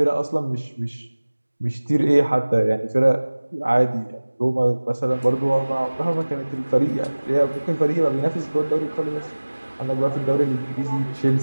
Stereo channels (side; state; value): both; inverted; correlation -1.00